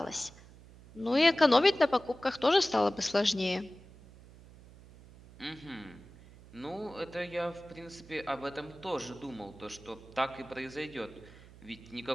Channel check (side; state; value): right; noise; hum, 21 dB below the sound